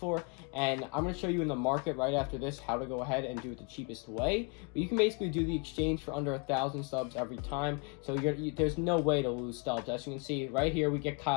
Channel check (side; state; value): right; quieter; 34.3 dB